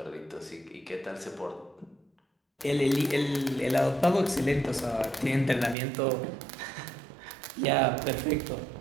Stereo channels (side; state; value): left; drops out; at 5.8 s